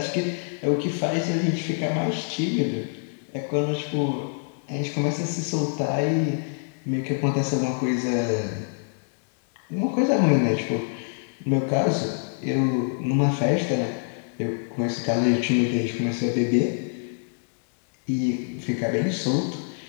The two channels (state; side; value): silent; right; digital silence